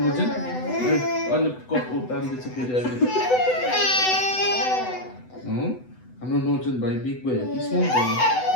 अनि कप उतार्दैछ फेरि अहिले हाम्रो नर्जन भाइ बिग बोय हो कि स्मल बोय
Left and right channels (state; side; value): late; right; 8.0 ms